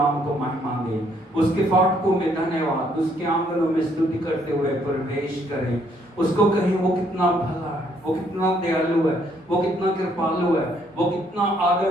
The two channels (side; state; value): both; normal; correlation 0.68